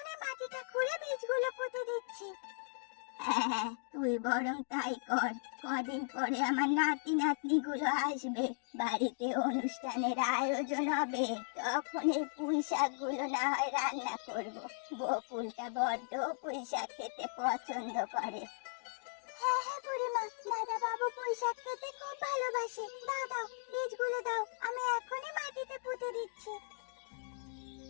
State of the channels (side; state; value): right; silent; digital silence